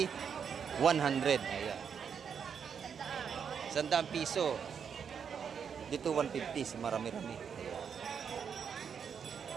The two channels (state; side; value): quieter; left; 7.1 dB